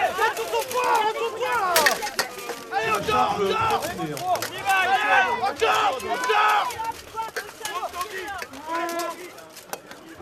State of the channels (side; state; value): both; identical; correlation 1.00